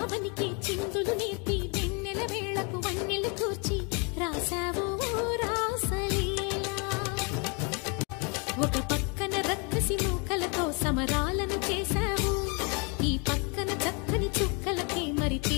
ఆవనికి చిందులు నేర్పి వెన్నెల వేళకు వన్నెలు కూర్చి రాసావు రాసలీలా. ఒక పక్కన రక్కసి మూకలతో సమరాలను చేశావు, ఈ పక్కన చక్కని చుక్కలకి మరి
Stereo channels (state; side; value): quieter; right; 33.7 dB